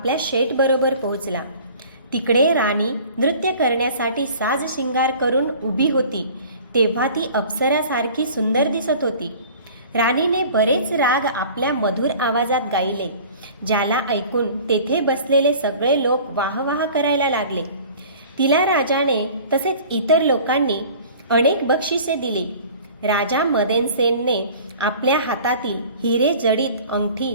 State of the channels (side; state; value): both; inverted; correlation -0.46